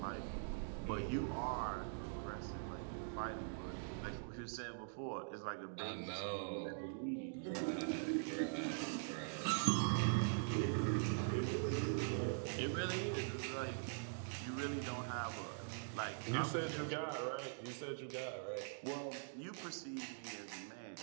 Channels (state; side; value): silent; left; digital silence